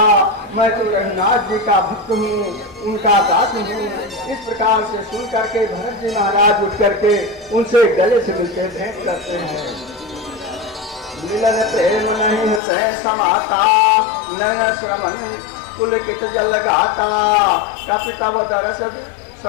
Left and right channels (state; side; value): drops out; right; at 12.6 s